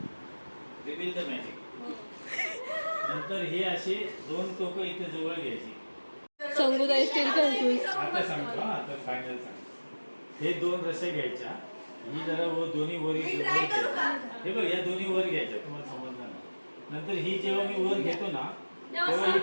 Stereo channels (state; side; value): inverted; both; correlation -1.00